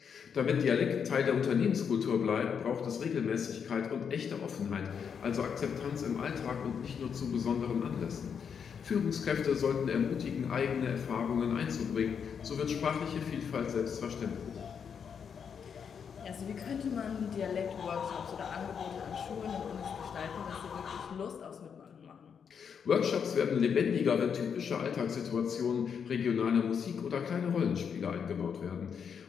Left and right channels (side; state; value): right; quieter; 7.0 dB